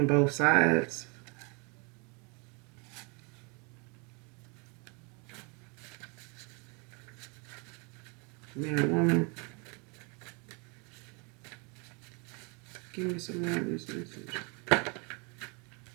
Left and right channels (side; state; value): left; quieter; 33.0 dB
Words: both sides. Man or woman. Give me some more of this message.